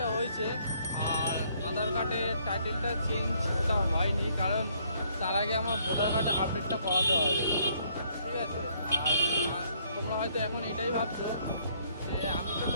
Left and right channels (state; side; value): inverted; both; correlation -0.66